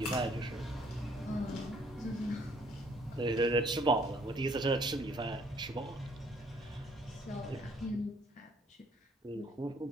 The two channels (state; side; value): normal; both; correlation 0.63